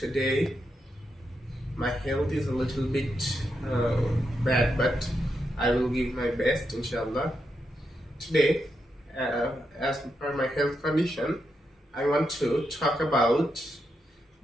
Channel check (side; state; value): both; normal; correlation 0.84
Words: My health is a little bit bad, but I will give my best, inshallah. Today, as per my health condition, I want to talk about